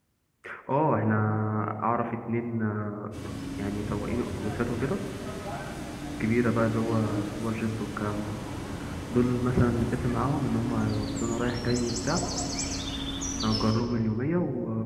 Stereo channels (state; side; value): identical; both; correlation 1.00